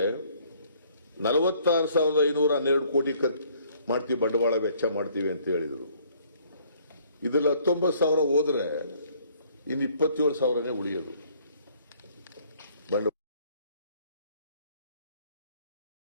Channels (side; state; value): both; inverted; correlation -0.61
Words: 46,512 ಕೋಟಿ ಮಾಡ್ತೀವಿ, ಬಂಡವಾಳ ವೆಚ್ಚ ಮಾಡ್ತೀವಿ ಅಂತ ಹೇಳಿದರು. ಇದೆಲ್ಲ 19,000 ಹೋದ್ರೆ ಇನ್ನು 27,000ನೇ ಉಳಿಯೋದು